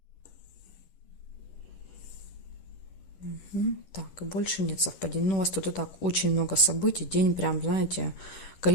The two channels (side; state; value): right; late; 10 ms